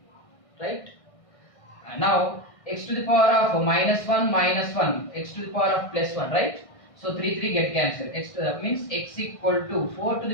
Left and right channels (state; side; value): late; right; 1.6 ms